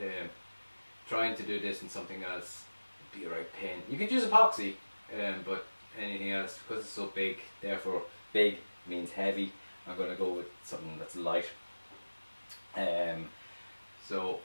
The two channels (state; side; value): inverted; both; correlation -1.00